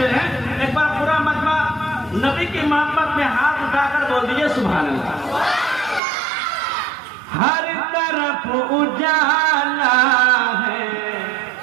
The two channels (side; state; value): left; drops out; at 6.0 s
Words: है। एक बार पूरा मजमा नबी की मोहब्बत में हाथ उठाकर बोल दीजिए सुभान अल्लाह। हर तरफ उजाला है,